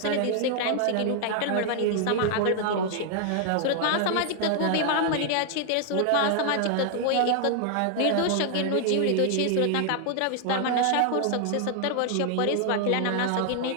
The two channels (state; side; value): different; both; correlation 0.00